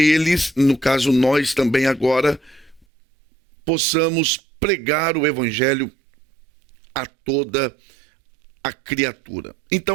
no caso nós também agora, possamos pregar o evangelho a toda a criatura.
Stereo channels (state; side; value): drops out; left; at 2.9 s